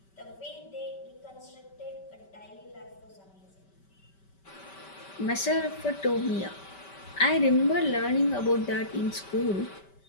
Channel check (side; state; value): right; late; 5.2 ms